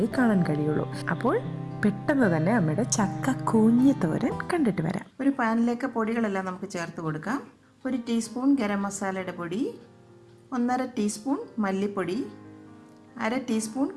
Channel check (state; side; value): identical; both; correlation 1.00